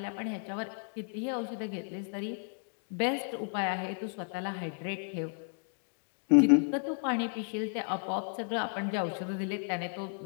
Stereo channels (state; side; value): silent; right; 56 dB below the other